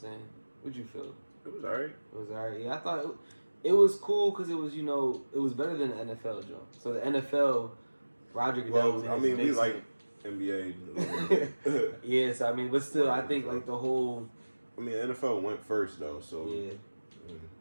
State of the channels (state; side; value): inverted; both; correlation -1.00